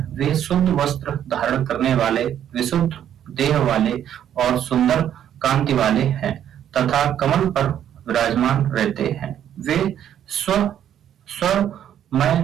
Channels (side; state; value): left; quieter; 10.2 dB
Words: वे शुद्ध वस्त्र धारण करने वाले, विशुद्ध देह वाले और सुंदर कांति वाले हैं तथा कमल पर विराजमान रहते हैं। वे